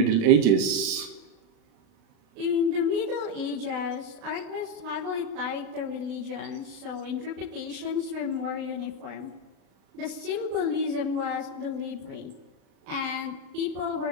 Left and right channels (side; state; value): left; late; 36 ms